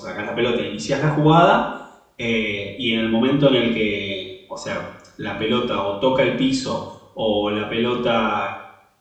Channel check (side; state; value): both; identical; correlation 1.00